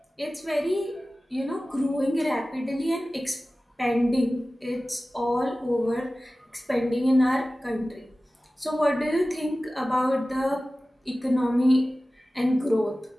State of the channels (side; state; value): both; normal; correlation 0.96